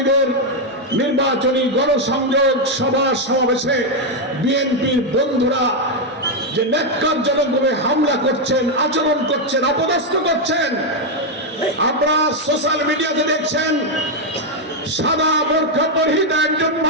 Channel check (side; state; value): both; normal; correlation 0.02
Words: নির্বাচনী গণসংযোগ সভা সমাবেশে বিএনপির বন্ধুরা যে ন্যাক্কারজনকভাবে হামলা করছেন, আচরণ করছেন, অপদস্থ করছেন, আপনারা সোশ্যাল মিডিয়াতে দেখছেন। সাদা বোরখা পরিহিত একজন